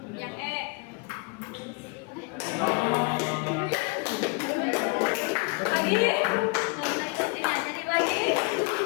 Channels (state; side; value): quieter; right; 29.6 dB